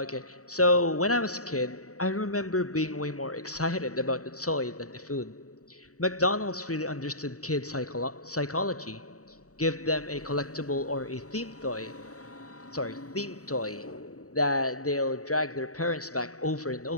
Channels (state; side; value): late; right; 0.66 ms